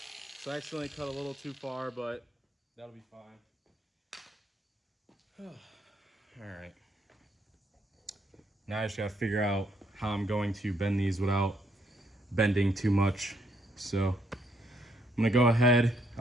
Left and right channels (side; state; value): both; normal; correlation 0.72